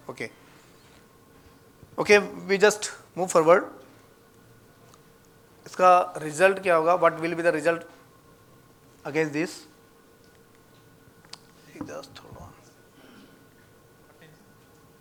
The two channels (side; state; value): both; identical; correlation 1.00